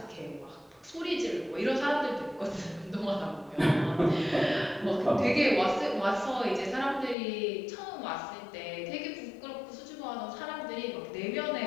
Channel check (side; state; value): right; drops out; at 7.2 s